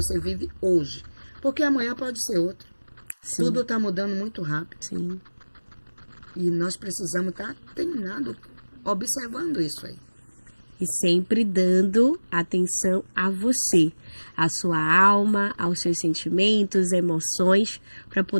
vive hoje. Porque amanhã pode ser outro. Sim. Tudo está mudando muito rápido. Sim. E nós precisamos estar atenados, observando isso aí. E sempre dando atenção a você, a sua alma, aos seus sentimentos, emoções, para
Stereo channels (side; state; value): both; inverted; correlation -1.00